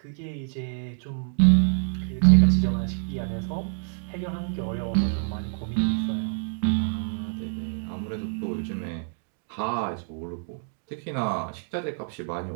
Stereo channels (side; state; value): left; silent; 60 dB below the other